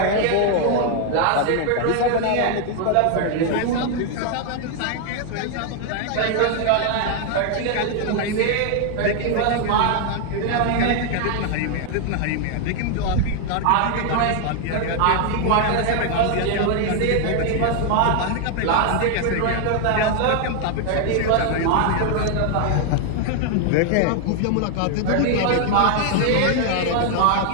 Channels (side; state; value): both; different; correlation 0.00